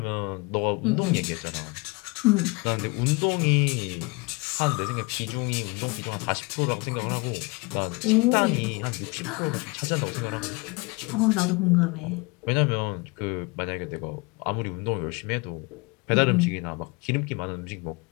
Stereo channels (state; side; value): quieter; right; 27.2 dB